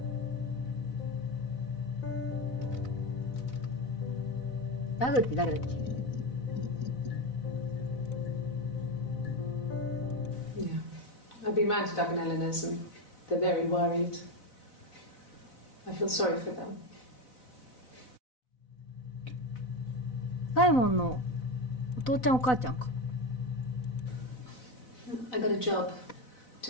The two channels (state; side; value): late; right; 4.0 ms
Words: ダグって誰だっけ？ Yeah. I've been round to Doug and Eleanor's and they're very worried. I feel sorry for them. サイモンのお父ちゃんお母ちゃんか。I got a job